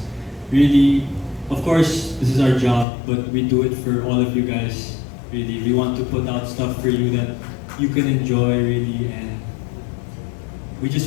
Really, of course, this is our job, but we do it for all of you guys. Really, we want to put out stuff for you that you can enjoy, really, and we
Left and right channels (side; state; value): right; drops out; at 2.9 s